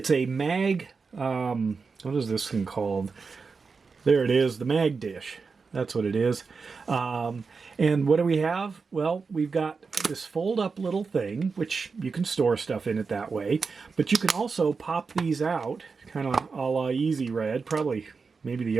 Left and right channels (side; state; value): left; quieter; 4.9 dB